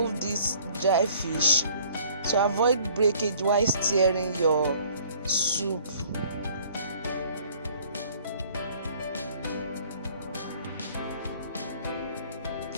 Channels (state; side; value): inverted; both; correlation -0.54